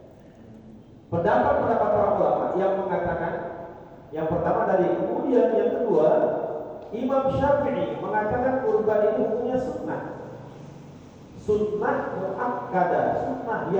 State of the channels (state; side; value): identical; both; correlation 1.00